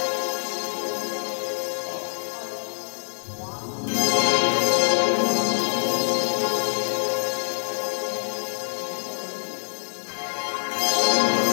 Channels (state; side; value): silent; right; digital silence